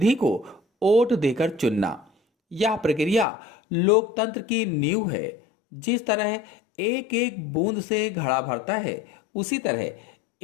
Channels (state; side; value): drops out; right; at 3.2 s